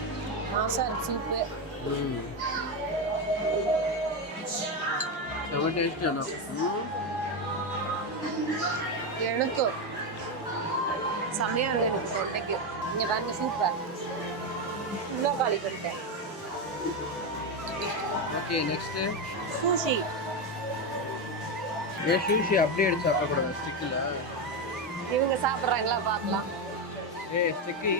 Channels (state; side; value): normal; both; correlation 0.11